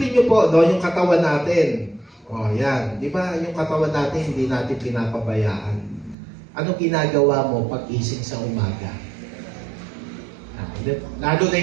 niyo po, no, yung katawan natin. O, yan. Di ba, yung katawan natin, hindi natin pinapabayaan. Ano ginagawa mo pag-ising sa umaga? Lalo na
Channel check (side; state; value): left; drops out; at 6.2 s